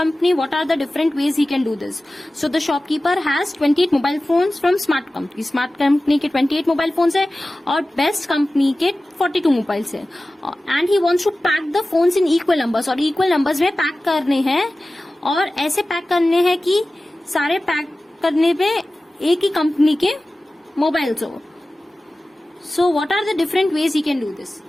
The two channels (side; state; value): both; normal; correlation 0.96